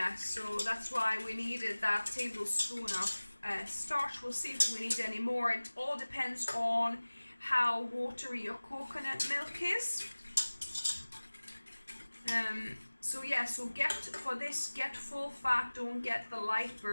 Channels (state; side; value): inverted; both; correlation -1.00